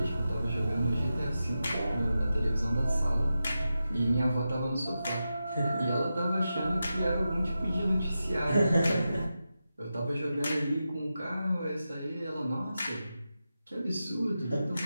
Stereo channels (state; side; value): inverted; both; correlation -0.91